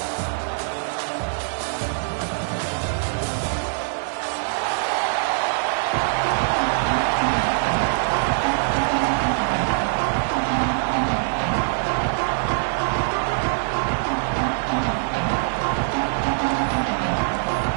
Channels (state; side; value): silent; left; digital silence